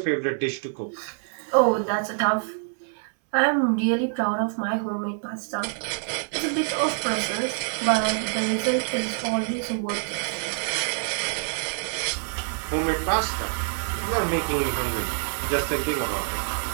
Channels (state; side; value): silent; left; 61 dB below the other